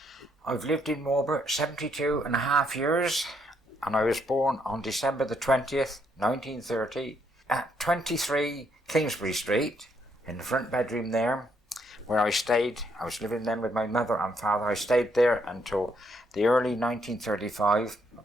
I've lived in Marlborough 72 and a half years, and I was born on December the 20th, 1930, at 23 Kingsbury Street, in the front bedroom there, where I stayed. I was living then with my mother and father. I stayed there until the early 1935.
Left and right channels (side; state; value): both; normal; correlation 0.73